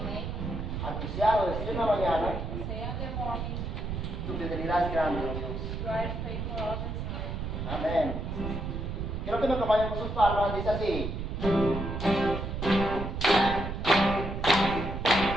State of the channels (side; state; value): right; noise; rumble, 4 dB below the sound